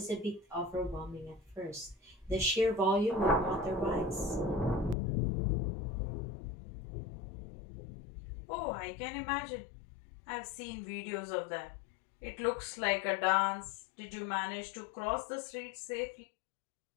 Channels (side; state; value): right; drops out; at 5.0 s